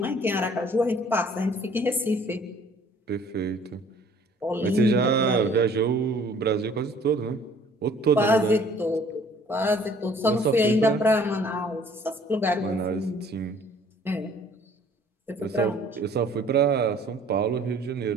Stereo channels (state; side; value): normal; both; correlation 0.55